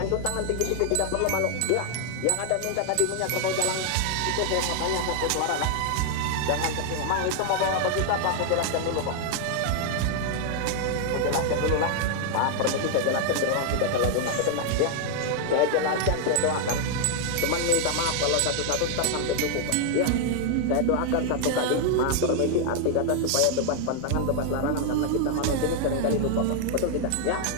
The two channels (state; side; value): different; both; correlation 0.00